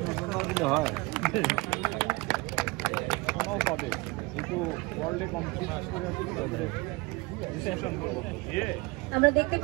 হয় পাবে কিন্তু ওয়ার্ল্ডে কম্পিটিশন করে আমরা দেখতে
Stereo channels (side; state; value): left; quieter; 24.2 dB